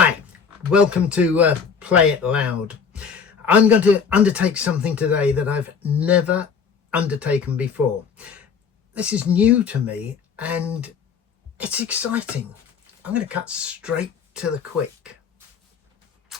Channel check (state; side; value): quieter; right; 6.3 dB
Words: welcome to Play It Loud. I'm going to undertake something today that I've never undertaken before. This is new to me and it's exciting. I'm going to cut straight to the quick.